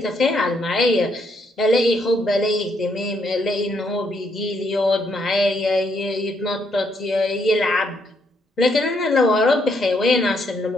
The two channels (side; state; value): both; normal; correlation 0.74